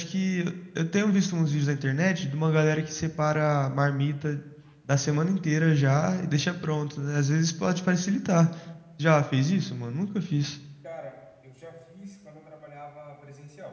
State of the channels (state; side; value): identical; both; correlation 1.00